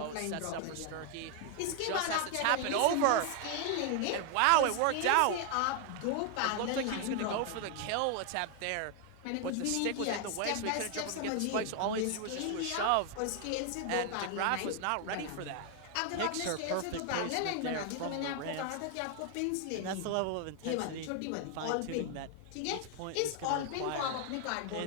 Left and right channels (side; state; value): both; different; correlation 0.00